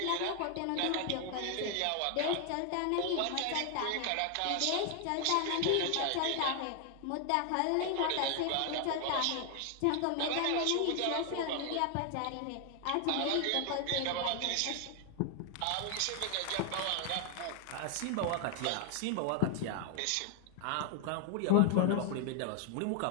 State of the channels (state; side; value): different; both; correlation 0.00